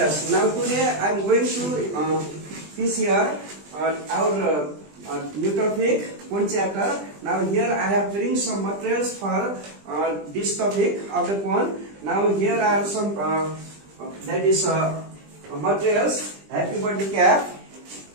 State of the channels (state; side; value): late; left; 20 ms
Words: Now today I'm going to teach here our new topic, one chapter. Now here I have bring some materials for this topic of the cone. Now here are some that is materials. Happy birthday cap.